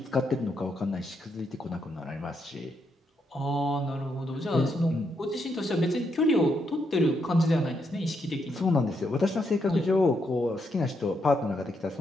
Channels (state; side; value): normal; both; correlation 0.79